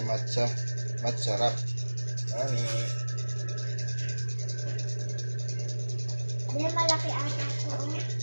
wrap. Ani. Hindi malaki ata ko.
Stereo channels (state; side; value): inverted; both; correlation -1.00